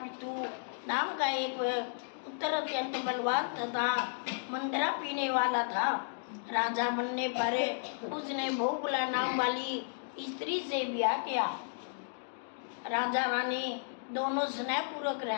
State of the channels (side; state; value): right; silent; digital silence